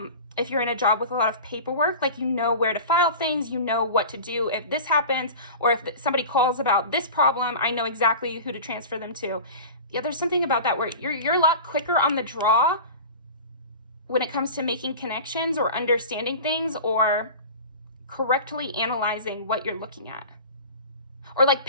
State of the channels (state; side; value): inverted; both; correlation -0.35